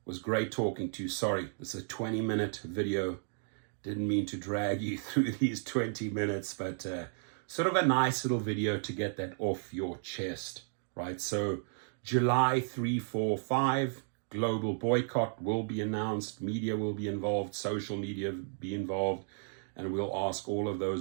was great talking to you. Sorry, this is a 20-minute video. Didn't mean to drag you through these 20 minutes, but sort of a nice little video to get that off your chest, right? So July 3, 4, 5, global boycott will be announced, media will be involved, social media be involved, and we'll ask all of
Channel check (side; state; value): left; silent; digital silence